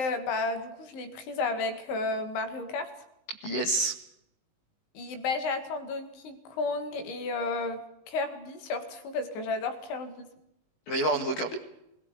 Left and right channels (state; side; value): late; right; 19 ms